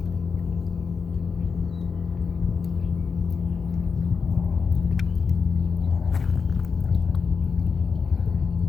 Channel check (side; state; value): right; quieter; 5.4 dB